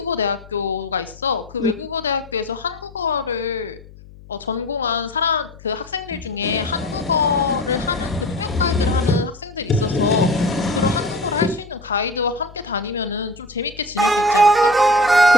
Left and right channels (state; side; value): noise; left; hum, 20 dB below the sound